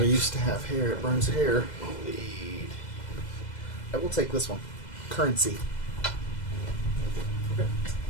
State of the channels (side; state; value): right; late; 2.0 ms